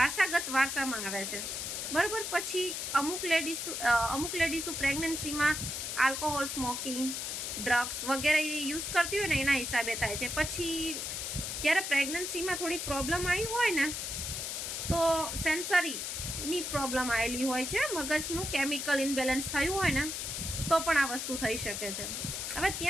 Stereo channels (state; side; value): noise; left; hiss, 4 dB below the sound